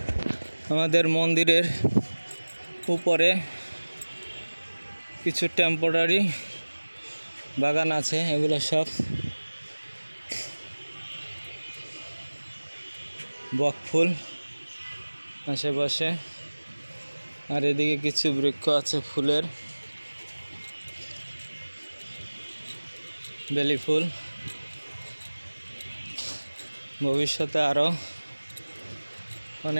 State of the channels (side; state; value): both; inverted; correlation -1.00